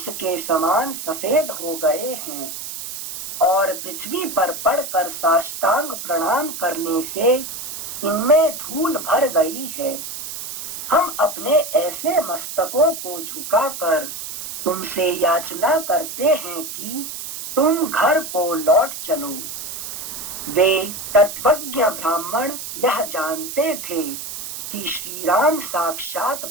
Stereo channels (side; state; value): right; noise; hiss, 8 dB below the sound